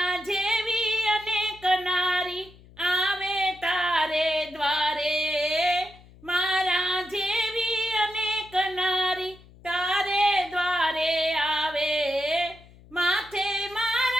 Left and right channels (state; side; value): noise; left; hum, 23 dB below the sound